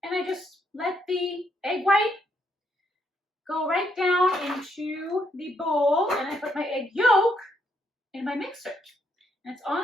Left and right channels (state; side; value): normal; both; correlation 0.75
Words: And I just let the egg white go right down into the bowl, and I put my egg yolk in my mixer. And it's